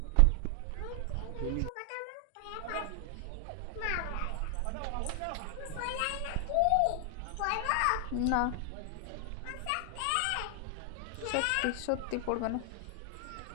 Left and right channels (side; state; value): both; different; correlation 0.00